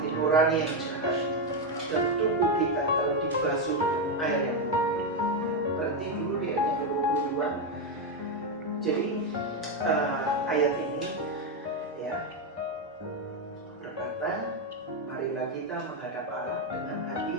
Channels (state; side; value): normal; both; correlation 0.06